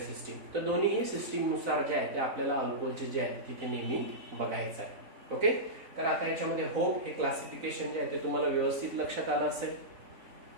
तर दोन्ही सिस्टीम नुसार जे आहे ते आपल्याला अल्कोहोलचे जे आहे तिथे नेहमी बघायचं आहे. ओके, तर आता याच्यामध्ये होप हे क्लासिफिकेशन जे आहे ते तुम्हाला व्यवस्थित लक्षात आलं असेल.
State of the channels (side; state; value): left; late; 4.0 ms